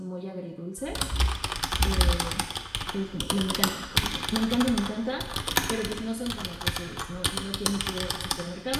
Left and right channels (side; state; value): both; identical; correlation 1.00